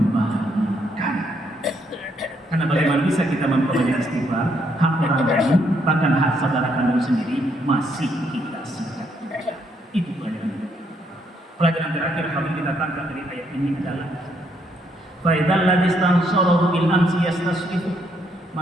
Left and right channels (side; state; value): both; normal; correlation 0.73